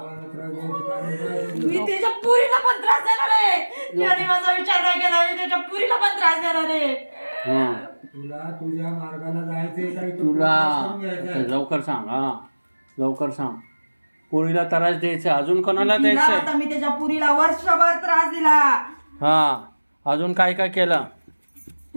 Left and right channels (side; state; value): both; inverted; correlation -1.00